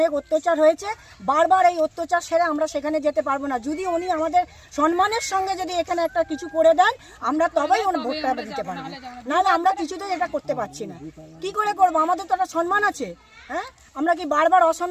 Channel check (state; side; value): identical; both; correlation 1.00